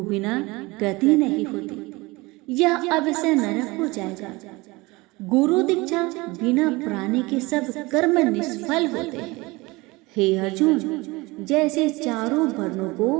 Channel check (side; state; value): left; quieter; 23.0 dB